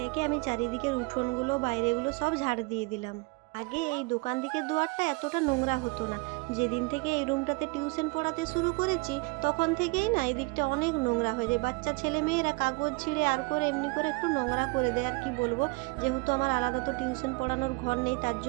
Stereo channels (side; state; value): left; quieter; 27.8 dB